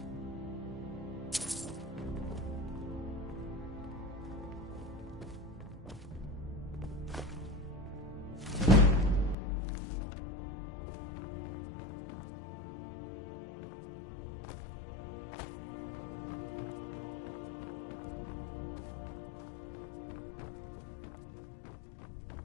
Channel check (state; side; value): drops out; right; at 9.3 s